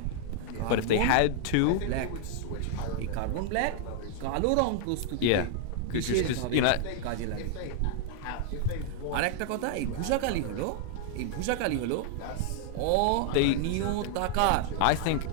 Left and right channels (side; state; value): both; different; correlation 0.00